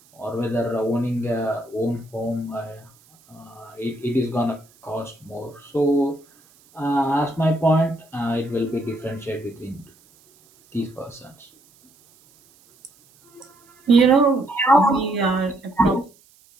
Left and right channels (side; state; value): right; noise; hiss, 30 dB below the sound